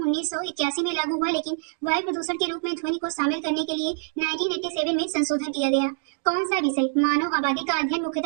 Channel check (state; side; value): silent; left; digital silence